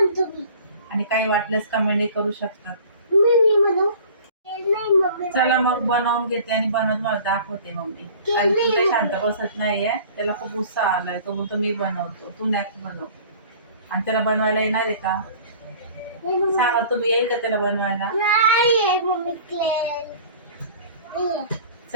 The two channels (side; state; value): both; inverted; correlation -0.46